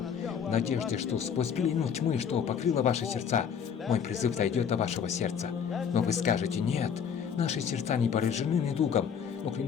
в надежде, что сквозь пелену тьмы, что покрыла ваши сердца, мой призыв дойдет до вашего сердца. Но вы скажете: «Нет, наши сердца не поражены недугом», но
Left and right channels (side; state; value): right; quieter; 7.4 dB